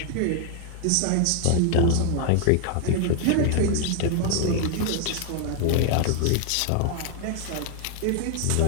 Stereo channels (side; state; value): both; different; correlation 0.00